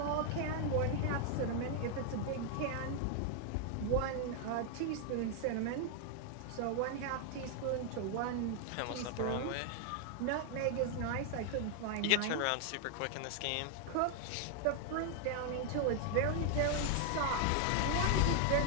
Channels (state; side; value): different; both; correlation 0.00